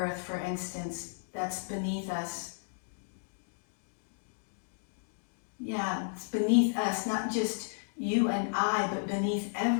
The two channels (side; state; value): right; silent; digital silence